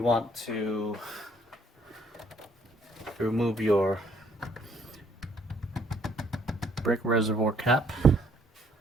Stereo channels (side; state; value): both; normal; correlation 0.65